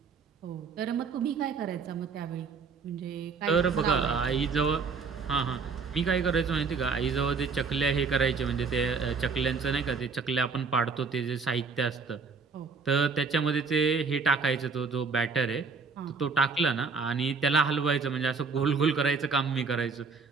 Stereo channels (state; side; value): quieter; left; 5.0 dB